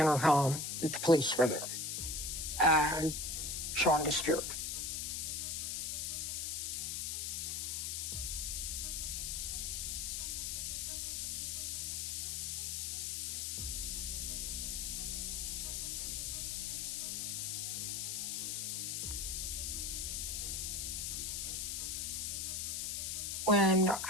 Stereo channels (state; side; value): noise; left; hiss, 1 dB below the sound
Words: that the police were there. And Sean disappeared. When